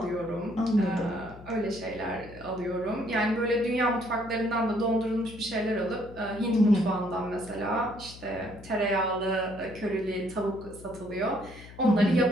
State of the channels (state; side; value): noise; left; hum, 17 dB below the sound